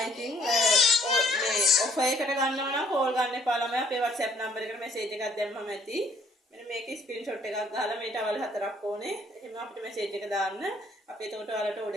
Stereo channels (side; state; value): both; normal; correlation 0.62